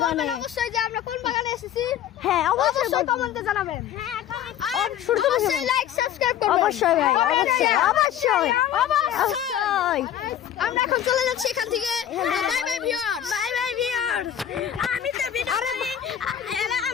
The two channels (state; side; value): quieter; right; 10.5 dB